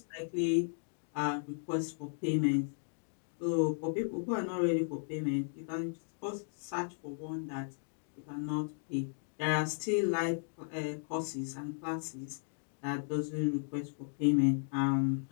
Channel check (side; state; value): right; silent; digital silence